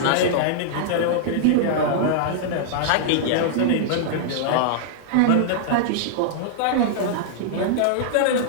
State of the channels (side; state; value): both; different; correlation -0.01